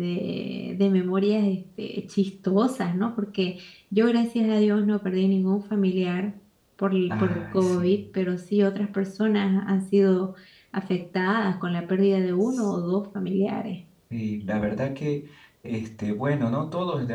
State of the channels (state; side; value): identical; both; correlation 1.00